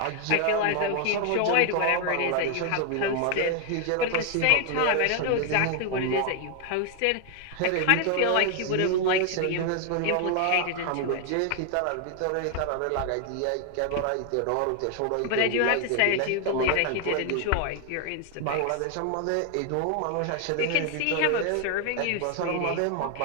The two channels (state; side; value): different; both; correlation 0.00